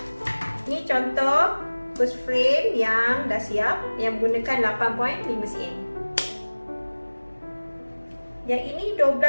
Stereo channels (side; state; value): both; inverted; correlation -1.00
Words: Ini contoh first frame yang dah siap, yang menggunakan 8.5 cm. Yang ini